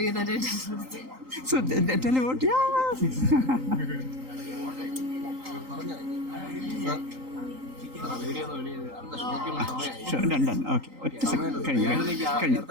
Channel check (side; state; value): left; late; 3.8 ms